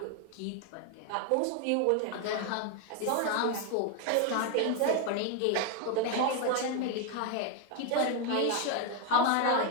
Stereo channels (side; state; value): both; different; correlation 0.01